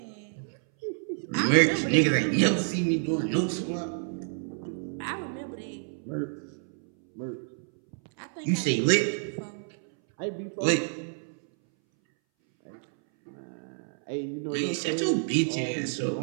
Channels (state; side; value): silent; left; 59 dB below the other